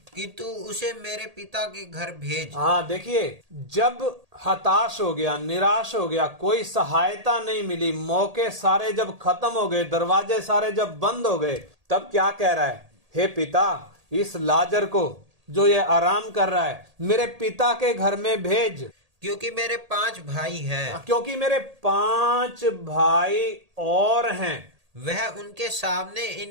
कि तू उसे मेरे पिता के घर भेज। हाँ, देखिए, जब हताश हो गया, निराश हो गया, कोई सहायता नहीं मिली, मौके सारे जब खत्म हो गए, दरवाजे सारे जब बंद हो गए, तब क्या कह रहा है, हे पिता, इस लाजर को जो ये आराम कर रहा है मेरे पिता के घर में भेज, क्योंकि मेरे 5 भाई हैं। क्योंकि मेरे 5 भाई और हैं। वह उनके सामने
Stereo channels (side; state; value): left; late; 1.8 ms